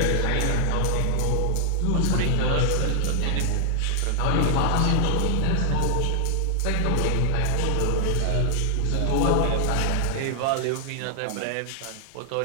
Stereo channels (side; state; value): both; different; correlation 0.00